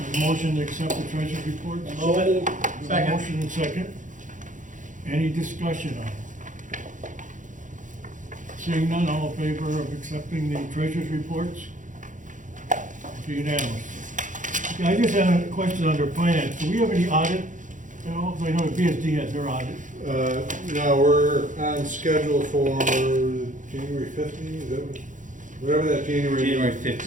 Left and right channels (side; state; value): left; late; 0.37 ms